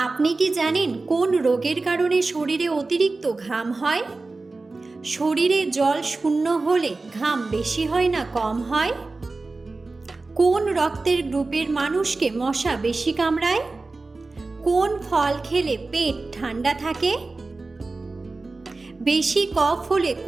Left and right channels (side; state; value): left; quieter; 3.5 dB